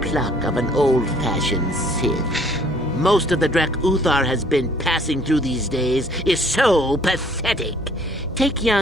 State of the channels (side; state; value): both; normal; correlation 0.59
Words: pluck of an old-fashioned Sith. Most of the Drek Uthar has been passing through these days is so pathetic. Take